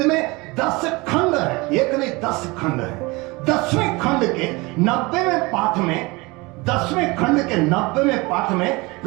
में 10 खंड है, एक नहीं 10 खंड है। 10वें खंड के 90वें पाठ में, 10वें खंड के 90वें पाठ में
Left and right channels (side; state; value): left; quieter; 24.3 dB